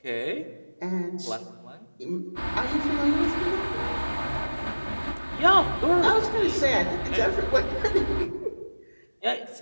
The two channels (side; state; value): both; inverted; correlation -1.00